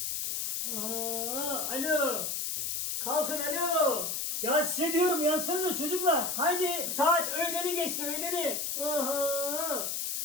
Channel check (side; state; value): left; noise; hiss, 1 dB below the sound